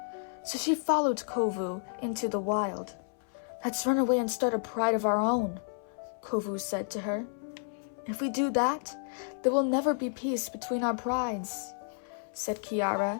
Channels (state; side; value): silent; right; 57 dB below the other